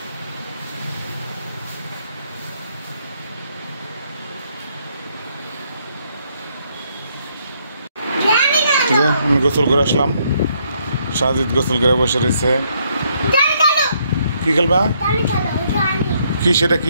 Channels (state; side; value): inverted; both; correlation -0.72